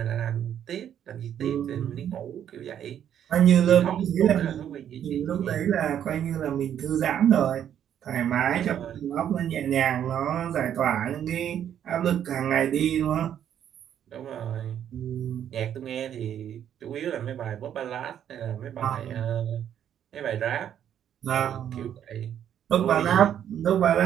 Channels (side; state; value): left; quieter; 9.8 dB